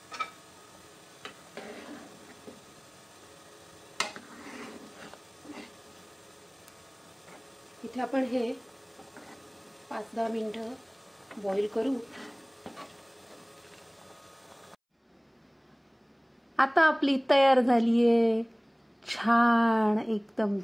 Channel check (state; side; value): identical; both; correlation 1.00